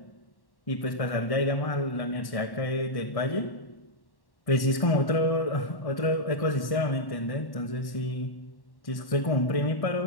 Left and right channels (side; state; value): right; late; 1.1 ms